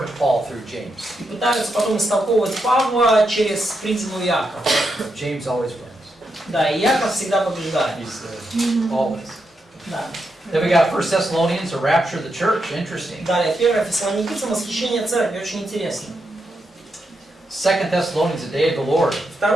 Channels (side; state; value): both; normal; correlation 0.83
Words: Paul through James. И пытаются потом истолковывать Павла через призму Иакова. James always wins. Да, и Иаков всегда побеждает. He's always. Да. Then we got 1 Thessalonians, the rapture of the church. Interesting. Далее, 1 Фессалоникийцам, восхищение церкви, очень интересно. 2 Thessalonians, the day of the Lord. 2